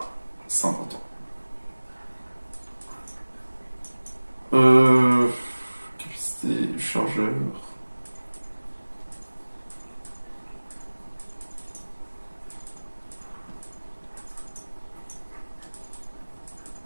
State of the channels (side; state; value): both; inverted; correlation -1.00